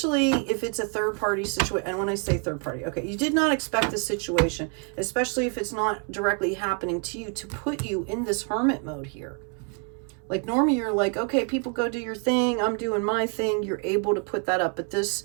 if it's a third party situation. And when I say third party, okay, you did not expect this situation, especially if it's not directly happening to you, to put you in this hermit mode here. Like normally you're like, okay, people go do your thing, I'm doing my thing. You're able to put that up. But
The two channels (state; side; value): quieter; left; 37.8 dB